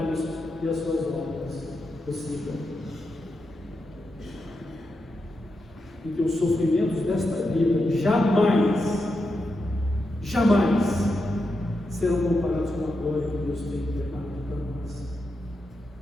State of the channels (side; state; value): both; normal; correlation 0.86